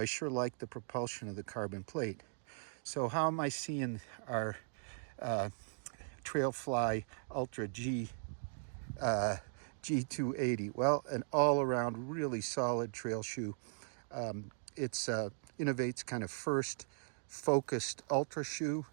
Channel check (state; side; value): silent; left; digital silence